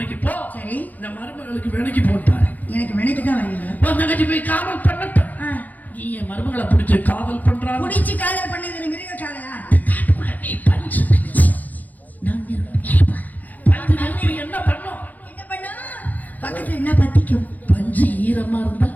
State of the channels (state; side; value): late; right; 0.081 ms